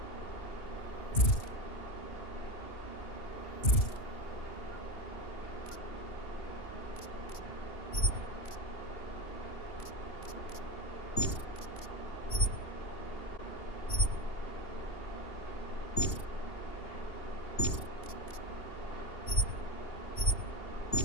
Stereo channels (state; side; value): late; right; 2.8 ms